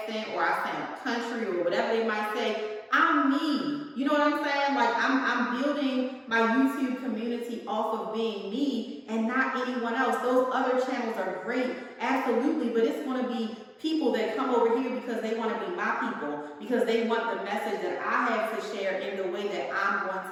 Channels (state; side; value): identical; both; correlation 1.00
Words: or I sound country, or whatever they might say. I'm me. You know what I'm saying? Like, I'm building my YouTube community off of being me and not anyone else. Those other channels are great, absolutely, but it's going to be people that come over here because they want to be my people, because they want the message that I have to share in the way that I'm